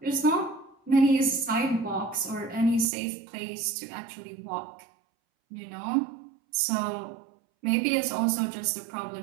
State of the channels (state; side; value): drops out; left; at 2.9 s